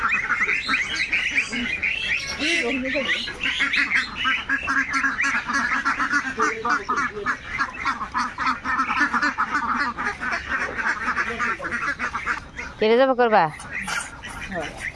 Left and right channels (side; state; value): both; identical; correlation 1.00